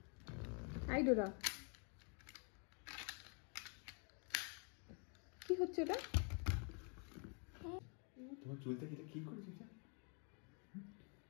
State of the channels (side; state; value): right; quieter; 38.0 dB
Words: আই ডোডা, কি হচ্ছে এটা? তোমার চুলটা কি করেছিস?